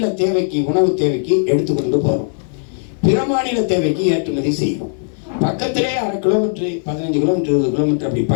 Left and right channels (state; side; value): silent; right; 59 dB below the other